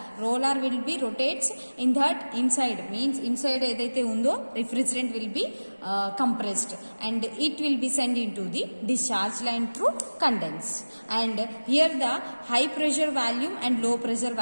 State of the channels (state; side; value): inverted; both; correlation -1.00